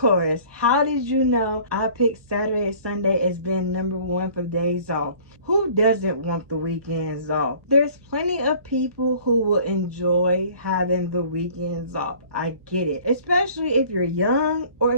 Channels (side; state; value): left; late; 1.2 ms